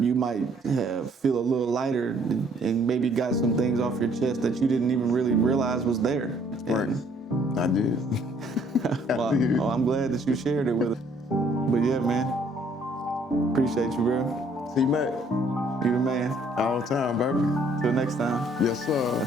you might feel a little lighter, and maybe got some things off your chest that you didn't even really realize was there. Right. I did. Well, I'm glad that you shared it with us. But yeah, man, appreciate you, bro. See you, Matt. You the man. All the time, baby. Till next time. Yes,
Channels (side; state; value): both; normal; correlation 0.63